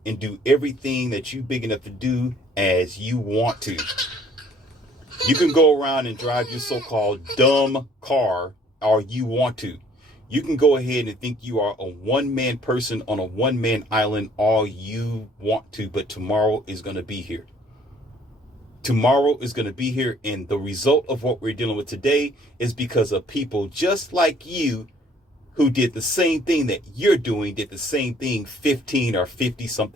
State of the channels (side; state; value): both; normal; correlation 0.59